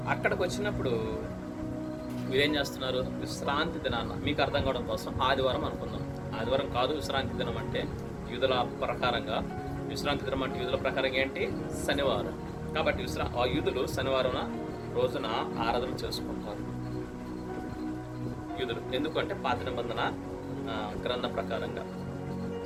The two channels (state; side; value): identical; both; correlation 1.00